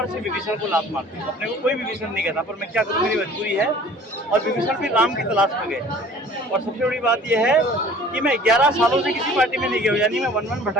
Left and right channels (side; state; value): both; normal; correlation 0.48